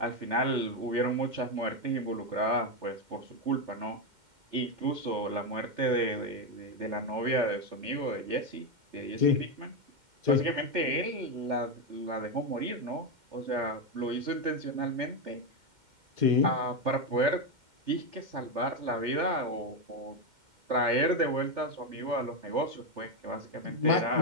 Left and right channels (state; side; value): late; left; 2.1 ms